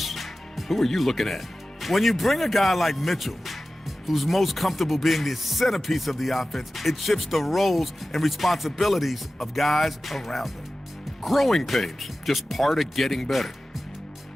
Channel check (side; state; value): both; normal; correlation 0.95